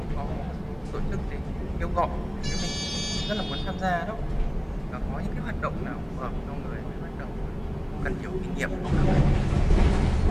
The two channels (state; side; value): identical; both; correlation 1.00